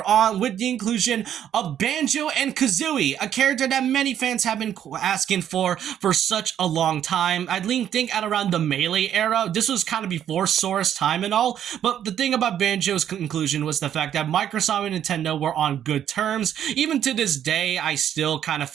on with the inclusion of Banjo and Kazooie, a character that many fans have been asking for such a long time. I think at around the Melee era. This was kind of before Sora's time and all, but the thing about Banjo's inclusion was the fact that Microsoft and Nintendo were on good terms. Even to this day, I still kind of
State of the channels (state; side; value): quieter; left; 10.1 dB